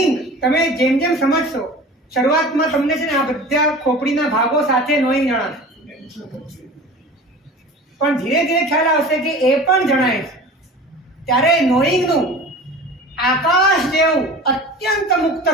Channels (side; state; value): both; normal; correlation 0.38